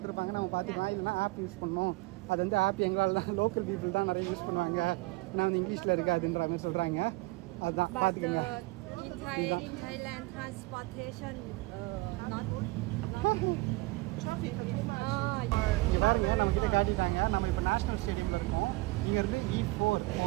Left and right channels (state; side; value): quieter; left; 22.7 dB